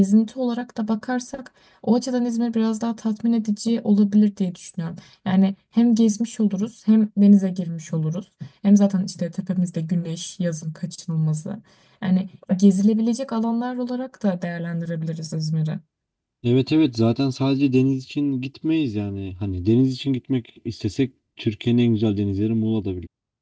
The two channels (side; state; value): both; identical; correlation 1.00